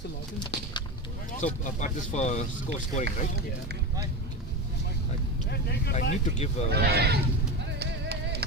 login? so part this for scoring, right? Yeah. I need to give.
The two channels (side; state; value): both; normal; correlation 0.21